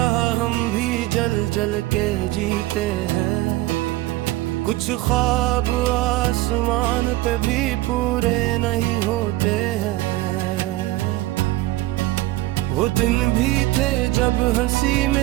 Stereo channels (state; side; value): quieter; left; 17.6 dB